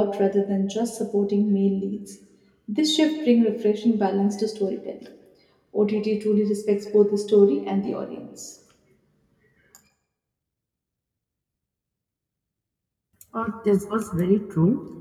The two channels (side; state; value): both; identical; correlation 1.00